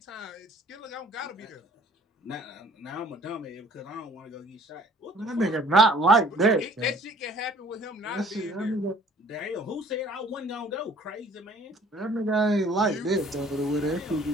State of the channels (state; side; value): normal; both; correlation 0.55